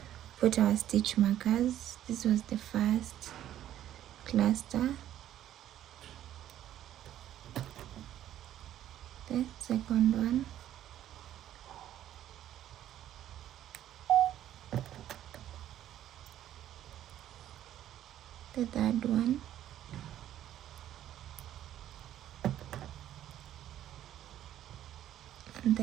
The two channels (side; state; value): left; quieter; 11.9 dB